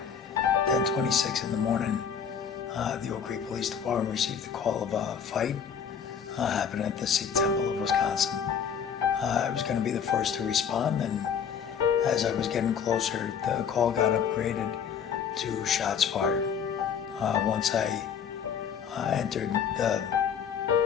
10:26 in the morning, the Oak Creek Police Department received a call of a fight happening at the Sikh Temple of Wisconsin. I was going to be the first to respond, and as I was getting closer, the call got upgraded to shots fired. Once I entered the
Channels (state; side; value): quieter; right; 7.4 dB